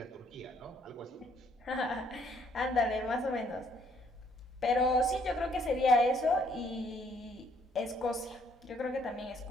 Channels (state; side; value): normal; both; correlation 0.66